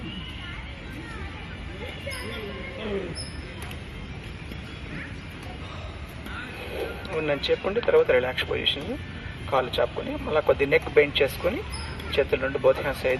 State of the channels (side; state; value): both; identical; correlation 1.00